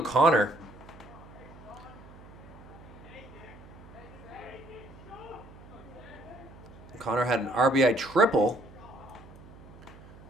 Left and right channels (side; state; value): right; noise; hum, 19 dB below the sound